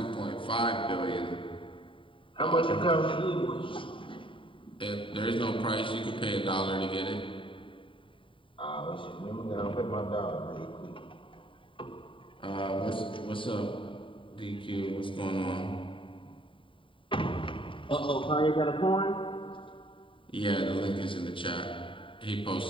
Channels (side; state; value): right; late; 0.25 ms